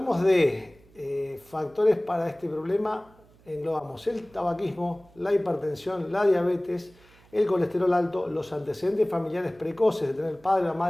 de factores para este problema, englobamos el tabaquismo, la hipertensión, la diabetes, el colesterol alto, los antecedentes familiares precoces de tener el padre o la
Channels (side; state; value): right; noise; hum, 28 dB below the sound